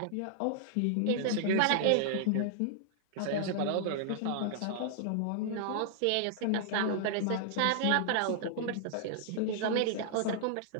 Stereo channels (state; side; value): different; both; correlation -0.01